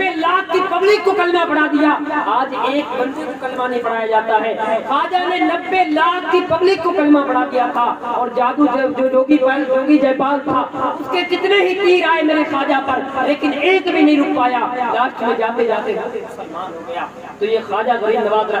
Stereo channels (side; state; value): both; identical; correlation 1.00